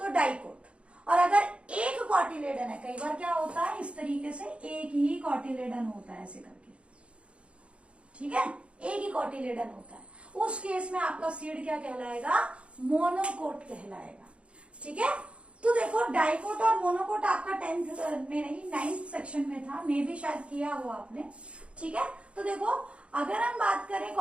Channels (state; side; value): late; left; 0.060 ms